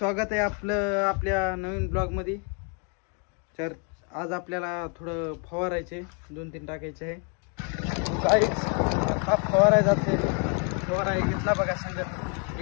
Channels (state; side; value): quieter; right; 38.0 dB